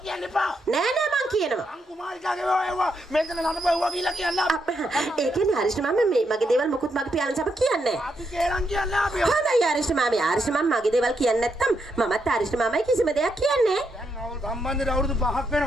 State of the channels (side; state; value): both; normal; correlation 0.80